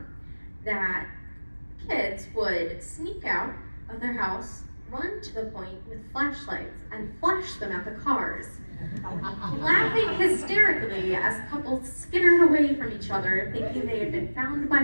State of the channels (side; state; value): both; inverted; correlation -1.00